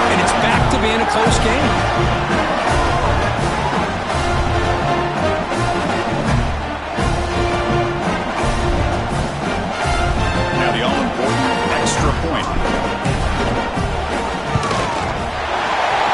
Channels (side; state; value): both; identical; correlation 1.00